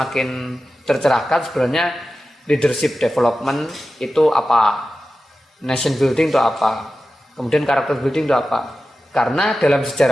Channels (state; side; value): normal; both; correlation 0.93